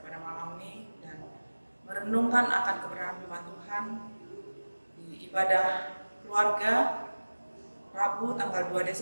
pada malam ini dan merenungkan akan kebenaran firman Tuhan di ibadah keluarga Rabu tanggal 2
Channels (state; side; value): inverted; both; correlation -1.00